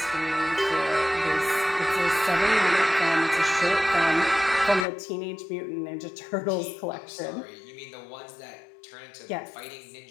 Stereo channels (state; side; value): drops out; right; at 4.9 s